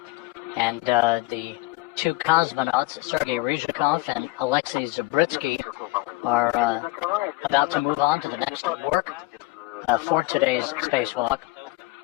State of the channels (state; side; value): quieter; right; 21.6 dB